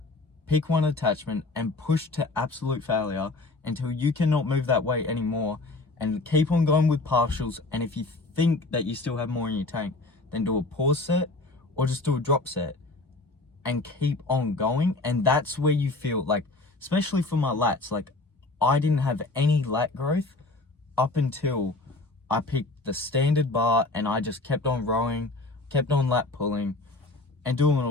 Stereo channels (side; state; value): right; quieter; 3.1 dB